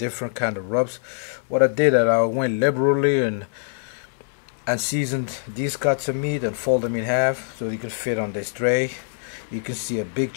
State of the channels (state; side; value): silent; right; 63 dB below the other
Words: kind of rubs. What I did, I went liberally and seasoned these cuts of meat and fold them in half so they could fit on this tray. You can see a big